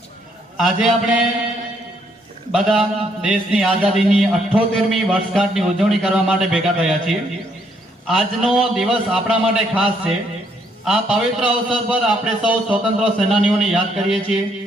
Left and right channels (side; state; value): both; normal; correlation 0.71